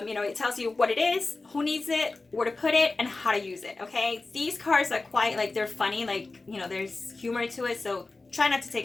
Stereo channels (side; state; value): right; quieter; 3.5 dB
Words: tells you what it is, who needs it, where to put it, and how to use it. Okay, these cards are quite like, they're funny, like, there's humor to it, so try not to